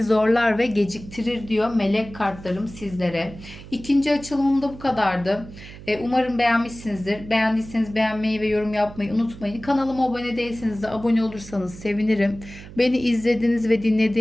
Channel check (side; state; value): right; noise; hum, 16 dB below the sound